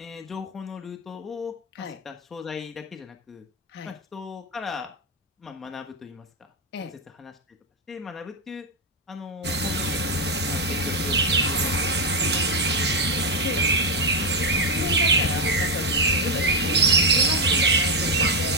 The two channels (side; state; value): both; normal; correlation 0.03